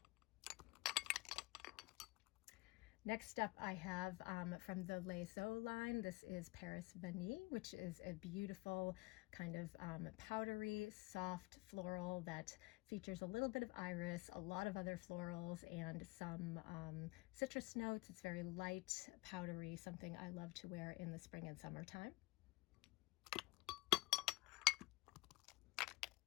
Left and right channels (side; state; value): right; quieter; 22.7 dB